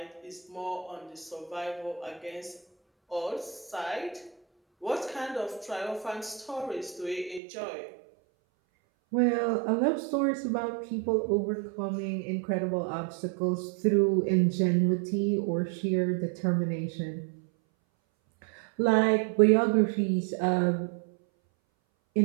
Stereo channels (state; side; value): drops out; left; at 7.4 s